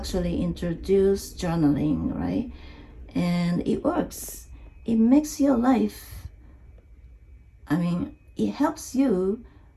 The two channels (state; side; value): identical; both; correlation 1.00